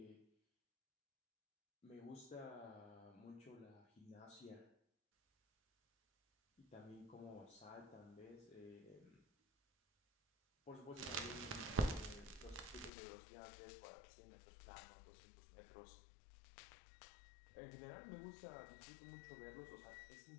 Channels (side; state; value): right; drops out; at 12.9 s